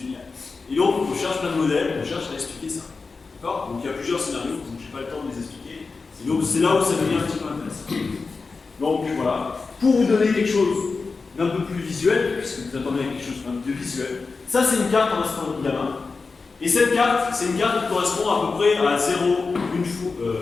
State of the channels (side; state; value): right; quieter; 4.3 dB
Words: Et donc, on cherche plein de modèles, on cherche à expliquer ça. D'accord. Donc il y a plusieurs scénarios, donc je n'ai pas le temps de les expliquer. Et donc c'est là où ça devient un petit peu intéressant. Donc voilà, pour vous donner quelque chose d'un peu plus visuel, puisque vous attendez quelque chose d'un peu plus visuel, ça c'est une carte en astronomie gamma. Et cette carte, c'est une carte qui correspond à peu près à 0, une fois,